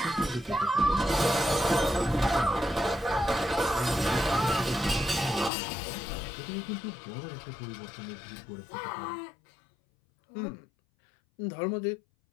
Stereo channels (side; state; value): right; drops out; at 5.5 s